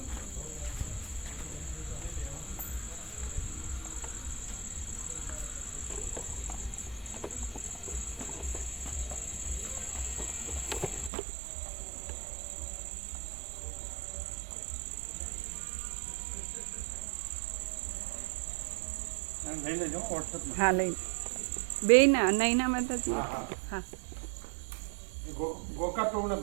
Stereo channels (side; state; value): left; drops out; at 11.1 s